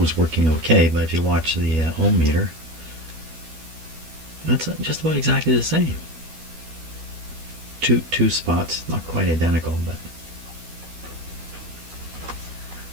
working okay, but if you watch the ohm meter, that's just about exactly the same. Two spots, not quite identical, but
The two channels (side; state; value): left; late; 12 ms